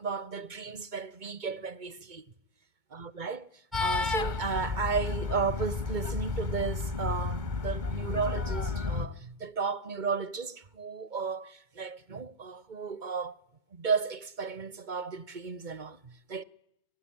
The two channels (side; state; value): left; late; 2.2 ms